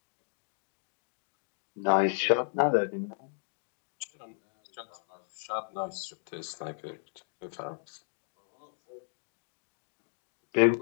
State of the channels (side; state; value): right; silent; digital silence